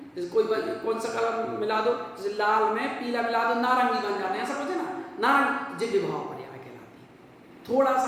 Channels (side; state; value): both; identical; correlation 1.00